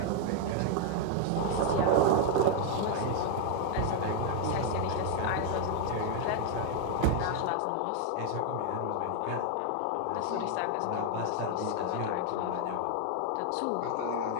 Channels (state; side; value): different; both; correlation 0.00